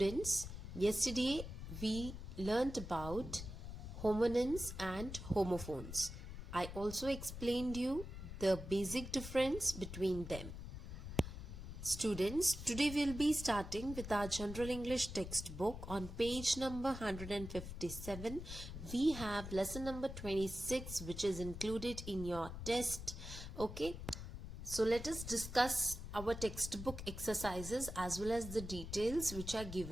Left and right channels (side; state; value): left; noise; rumble, 9 dB below the sound